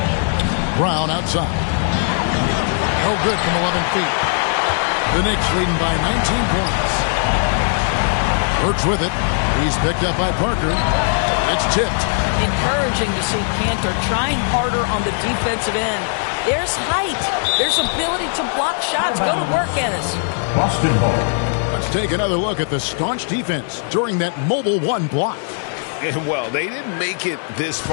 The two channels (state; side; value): silent; right; 65 dB below the other